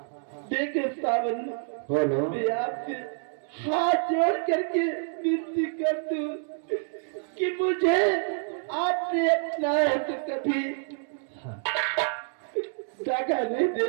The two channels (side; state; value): left; silent; 60 dB below the other